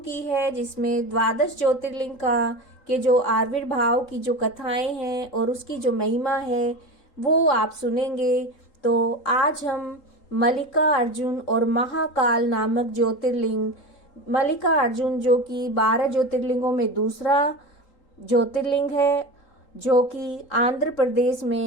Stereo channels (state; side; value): late; right; 3.8 ms